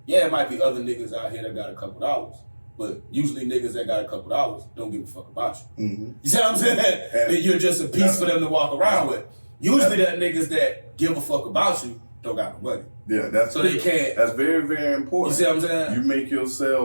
yeah, it might be other niggas out here that got a couple dollars. But usually niggas that got a couple dollars don't give a fuck about you. Mm-hmm. You see what I'm saying? That you're just a piece for them to walk around with. Usually that niggas that give a fuck about you don't got no money. Yeah, that's so they can't. That's very, very important. You see what I'm saying? You make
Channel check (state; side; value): inverted; both; correlation -1.00